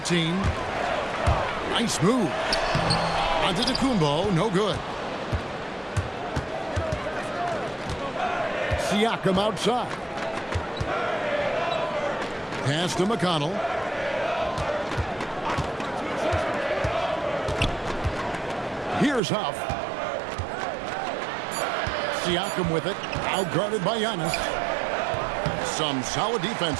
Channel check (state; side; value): drops out; left; at 19.2 s